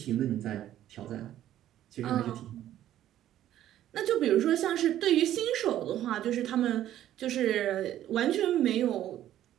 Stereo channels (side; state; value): left; quieter; 12.3 dB